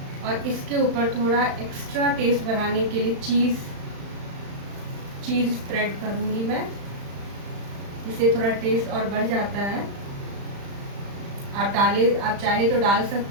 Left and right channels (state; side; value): late; left; 35 ms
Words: और इसके ऊपर थोड़ा एक्स्ट्रा टेस्ट बढ़ाने के लिए चीज़ स्प्रेड करूँगी मैं। इससे थोड़ा टेस्ट और बढ़ जाता है। आप चाहे तो डाल